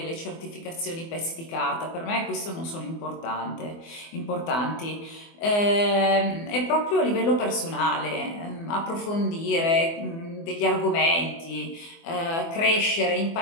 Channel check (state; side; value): late; right; 24 ms